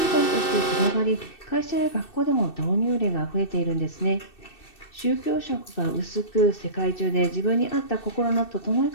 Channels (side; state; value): right; late; 2.6 ms